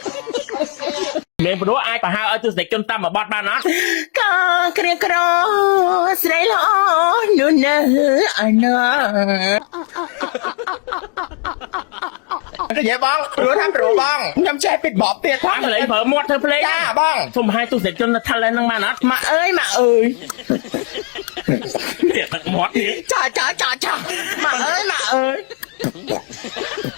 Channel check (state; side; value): quieter; right; 35.3 dB